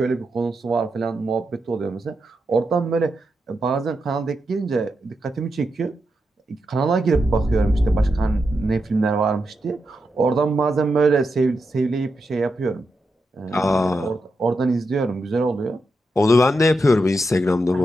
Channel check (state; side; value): normal; both; correlation 0.86